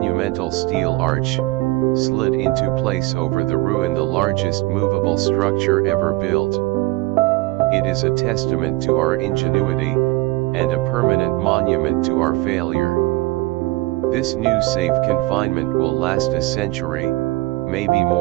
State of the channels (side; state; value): left; quieter; 20.4 dB